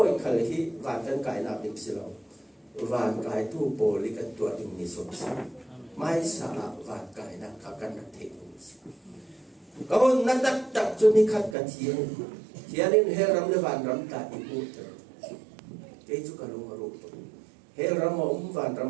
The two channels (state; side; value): drops out; left; at 11.6 s